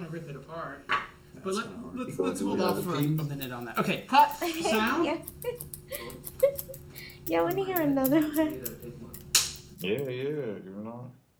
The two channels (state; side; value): identical; both; correlation 1.00